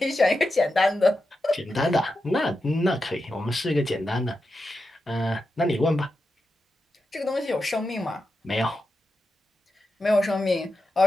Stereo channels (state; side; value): normal; both; correlation 0.89